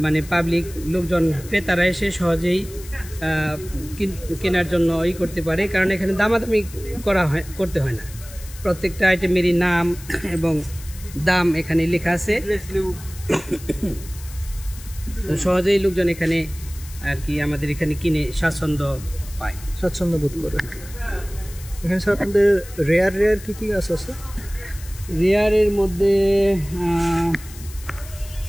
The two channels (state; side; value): noise; left; hiss, 17 dB below the sound